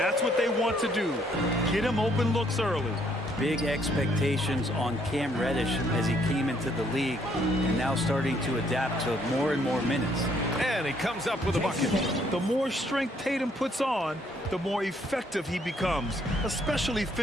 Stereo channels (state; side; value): normal; both; correlation 0.67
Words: what they want to do. Get him open looks early. Big expectations on Cam Reddish as he came into the league and now starting to adapt to more and more minutes. And he comes up with a bucket. The more strength Tatum puts on, the more effective he becomes, especially